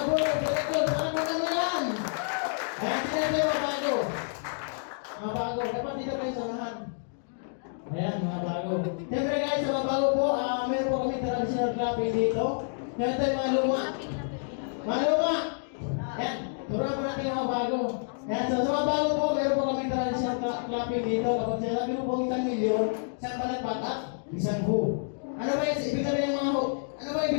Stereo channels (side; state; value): right; silent; digital silence